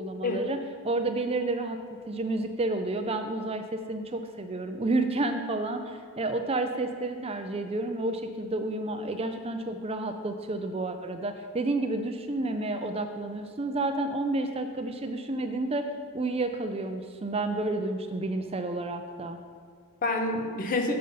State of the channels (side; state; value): both; normal; correlation 0.40